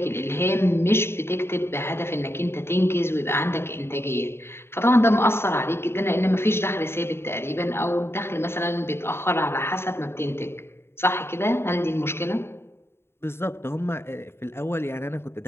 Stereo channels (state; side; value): late; right; 0.12 ms